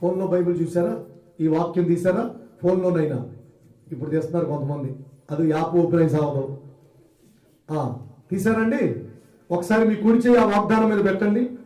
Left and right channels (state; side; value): identical; both; correlation 1.00